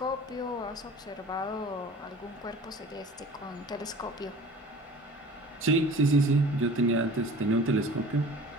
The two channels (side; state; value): both; normal; correlation 0.44